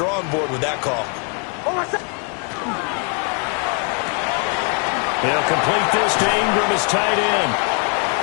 board with that call. They'll complete this to Ingram as tight end.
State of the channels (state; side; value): quieter; right; 39.6 dB